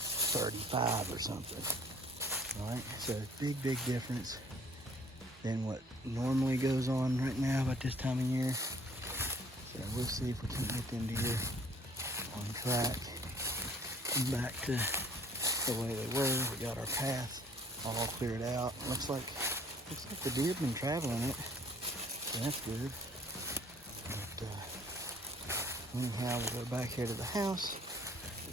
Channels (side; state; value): both; normal; correlation 0.57